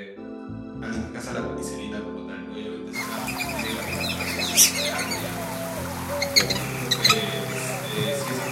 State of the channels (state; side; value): identical; both; correlation 1.00